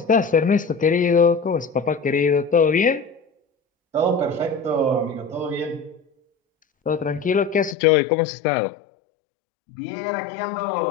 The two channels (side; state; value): right; drops out; at 7.8 s